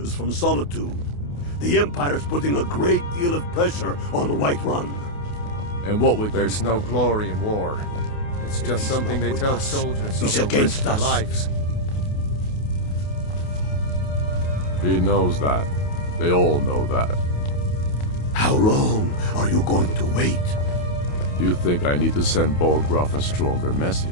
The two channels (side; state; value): right; late; 28 ms